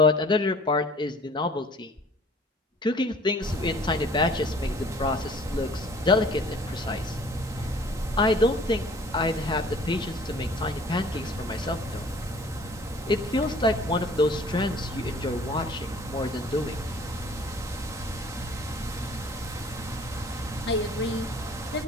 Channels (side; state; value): both; normal; correlation 0.52